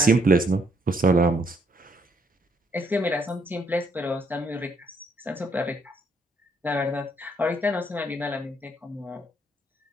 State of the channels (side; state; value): both; normal; correlation 0.70